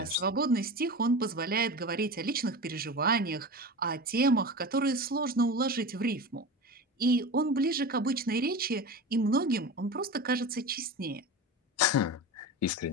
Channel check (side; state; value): both; normal; correlation 0.29